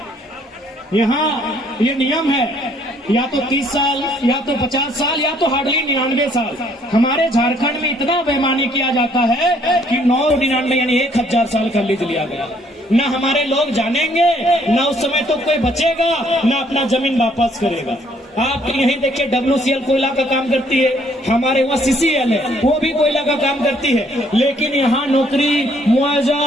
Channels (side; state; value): both; normal; correlation 0.65